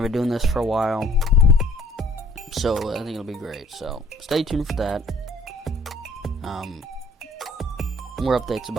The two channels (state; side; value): normal; both; correlation 0.57